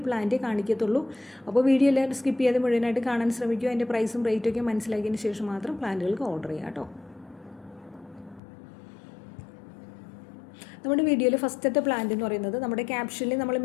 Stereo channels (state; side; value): drops out; right; at 8.4 s